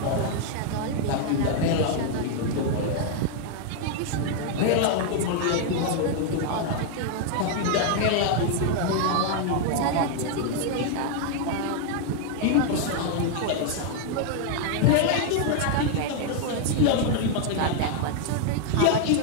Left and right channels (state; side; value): different; both; correlation 0.00